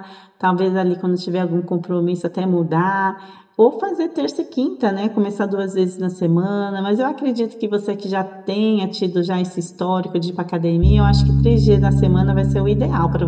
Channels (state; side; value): identical; both; correlation 1.00